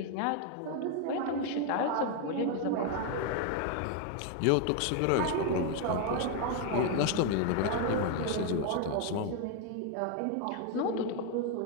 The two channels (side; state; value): both; different; correlation 0.01